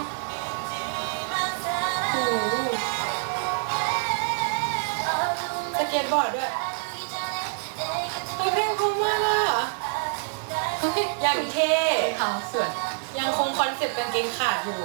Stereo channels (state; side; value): silent; left; 61 dB below the other